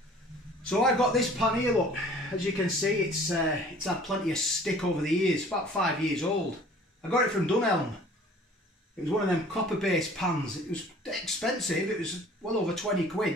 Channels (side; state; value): both; normal; correlation 0.50